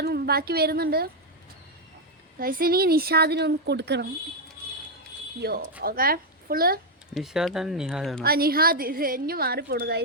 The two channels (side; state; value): both; normal; correlation 0.01